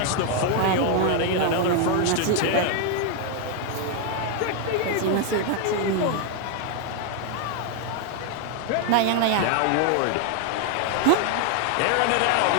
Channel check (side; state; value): both; different; correlation 0.00